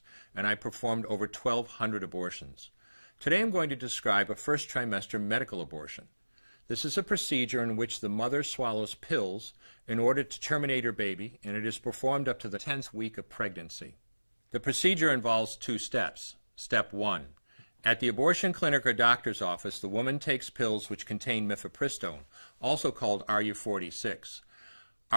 and I performed over 1,200 abortions. Today I'm going to describe a first trimester medical abortion. This is a procedure in which the mother swallows pills in order to terminate her baby, and it is performed up to the 10th week of pregnancy. The procedure involves 2 steps. Step 1. At the abortion clinic or doctor's office, the woman takes pills which contain mifepristone, also called RU46.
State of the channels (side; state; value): both; inverted; correlation -1.00